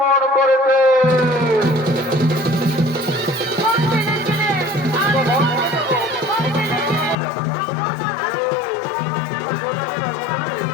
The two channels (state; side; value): drops out; right; at 7.2 s